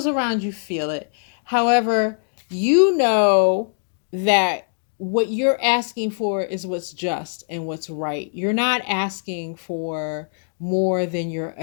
around you feel it. However, you know that what you're asking for is what's just and what's right. You're not asking for more than you're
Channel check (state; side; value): silent; right; digital silence